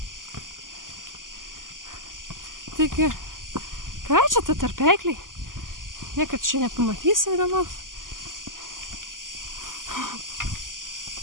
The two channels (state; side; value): late; left; 0.89 ms